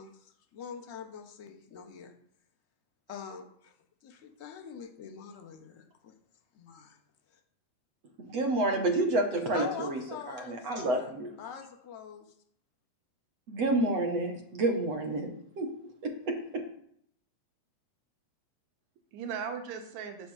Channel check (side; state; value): left; late; 8.0 ms